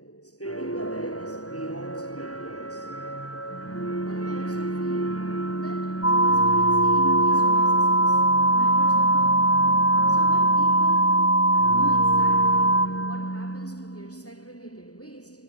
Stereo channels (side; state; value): right; late; 0.67 ms